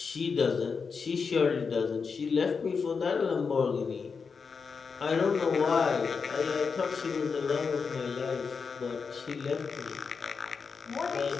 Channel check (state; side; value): quieter; right; 5.4 dB